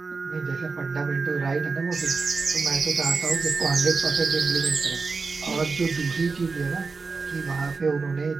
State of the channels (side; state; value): left; quieter; 4.4 dB